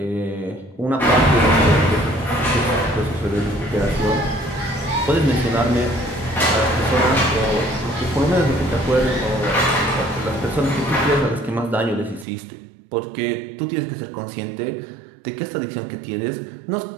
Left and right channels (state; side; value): drops out; left; at 12.2 s